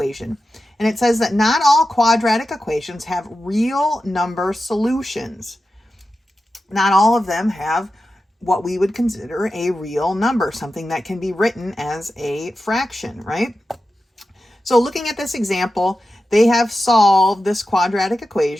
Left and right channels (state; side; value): normal; both; correlation 0.92